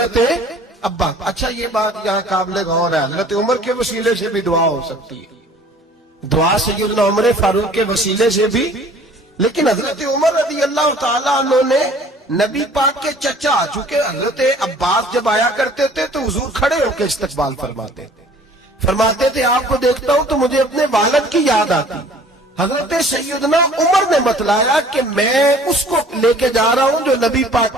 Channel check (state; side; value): normal; both; correlation 0.52